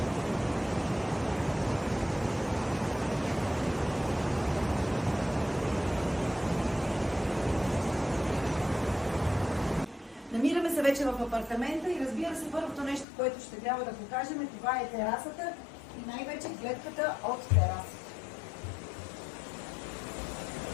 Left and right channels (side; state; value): right; drops out; at 13.1 s